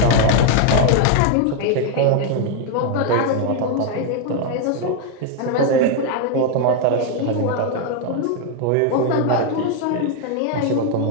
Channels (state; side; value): different; both; correlation 0.01